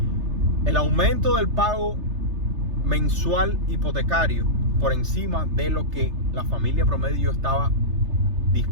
el aumento del pago mensual hipotecario por encima de lo que la familia promedio estaba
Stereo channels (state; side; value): late; left; 3.3 ms